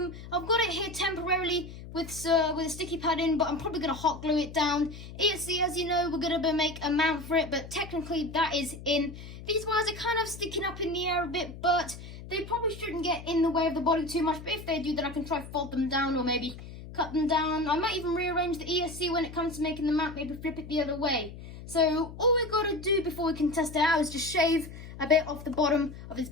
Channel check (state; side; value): noise; left; hum, 13 dB below the sound